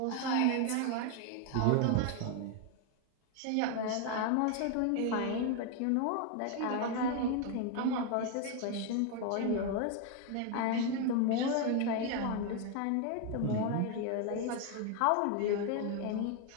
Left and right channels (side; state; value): both; different; correlation 0.01